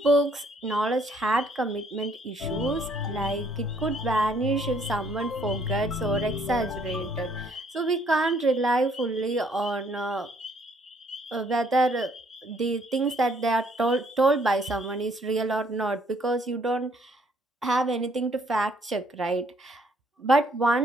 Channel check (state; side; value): normal; both; correlation 0.66